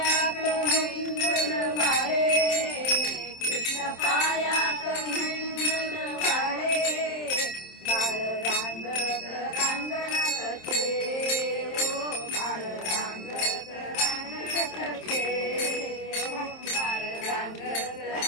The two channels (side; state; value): right; late; 27 ms